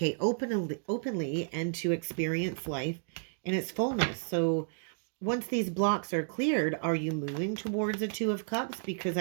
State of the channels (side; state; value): left; silent; digital silence